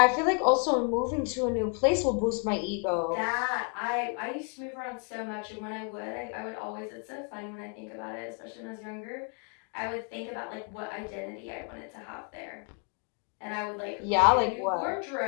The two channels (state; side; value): quieter; right; 39.5 dB